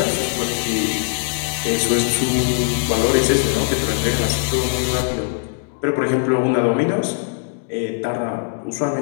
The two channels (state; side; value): silent; right; 64 dB below the other